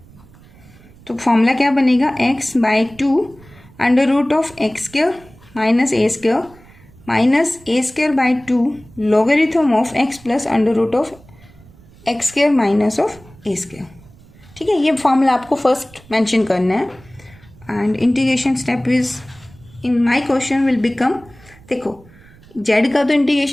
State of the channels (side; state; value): right; noise; rumble, 24 dB below the sound